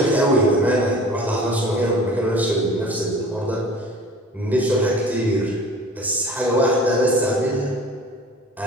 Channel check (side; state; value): both; normal; correlation 0.43